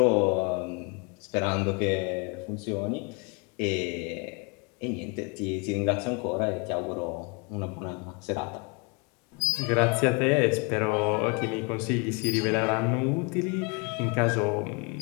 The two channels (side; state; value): right; quieter; 31.5 dB